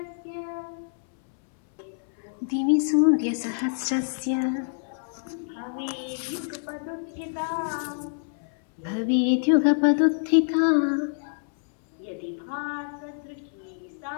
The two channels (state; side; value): silent; right; 61 dB below the other